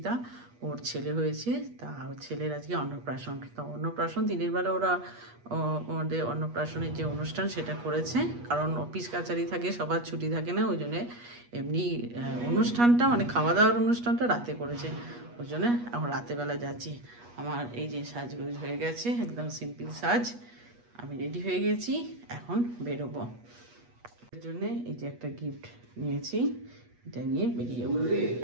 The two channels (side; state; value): left; late; 8.3 ms